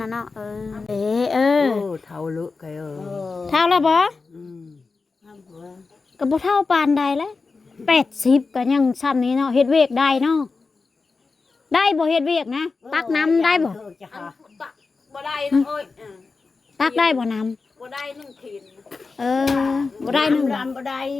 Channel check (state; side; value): quieter; right; 4.2 dB